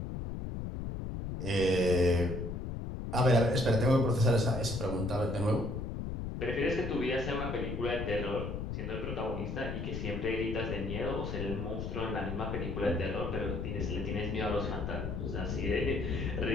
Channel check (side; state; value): left; noise; rumble, 4 dB below the sound